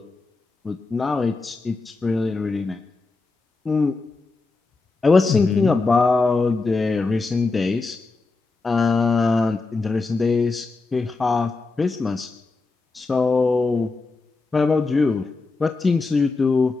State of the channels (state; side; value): quieter; right; 3.8 dB